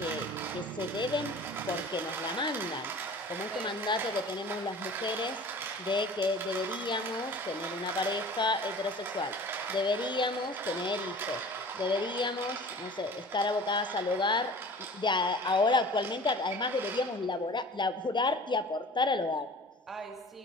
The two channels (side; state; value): both; normal; correlation 0.42